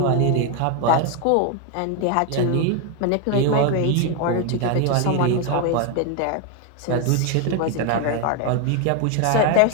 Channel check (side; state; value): both; different; correlation 0.01